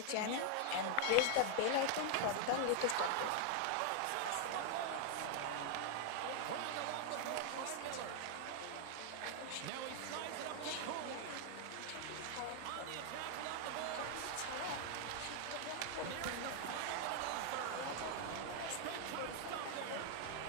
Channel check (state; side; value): different; both; correlation 0.00